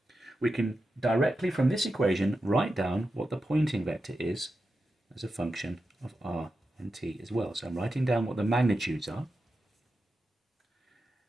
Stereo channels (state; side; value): normal; both; correlation 0.90